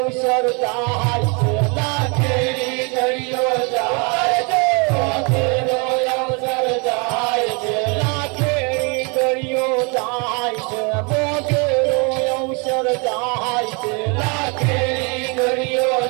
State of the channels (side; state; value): left; quieter; 32.9 dB